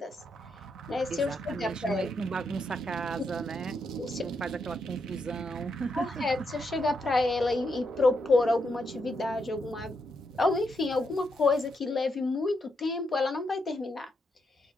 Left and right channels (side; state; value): both; normal; correlation 0.81